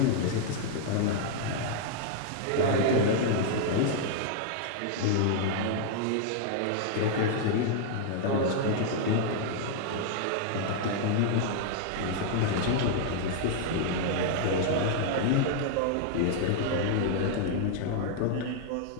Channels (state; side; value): different; both; correlation 0.00